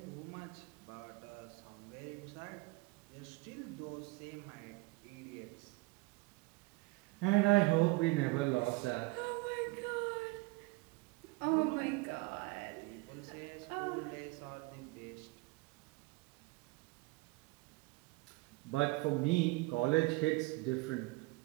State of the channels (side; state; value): left; quieter; 24.2 dB